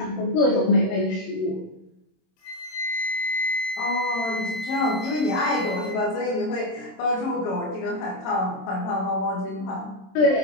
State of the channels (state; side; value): late; right; 27 ms